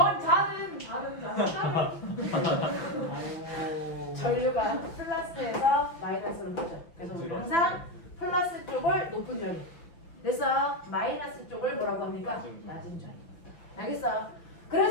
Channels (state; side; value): late; right; 5.9 ms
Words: 다른 전류가 플러스에서 마이너스로 흐르죠. 그래서 우리 항상 플러스 쪽을 높은 전위. 됐어? 마이너스 쪽을 뭐라고 합니까? 낮은 전위. 알겠어?